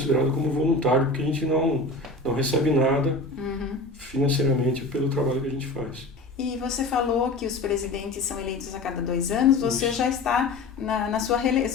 como voluntário, porque a gente não recebe nada financeiramente pelo trabalho que a gente faz. E você falou que os presidentes são eleitos a cada 2 anos, você já está na sua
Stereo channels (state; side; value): quieter; right; 3.1 dB